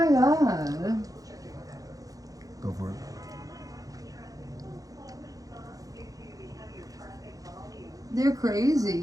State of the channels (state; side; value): late; left; 0.17 ms